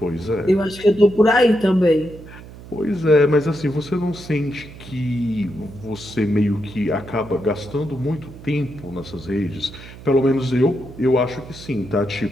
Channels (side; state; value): right; noise; hum, 17 dB below the sound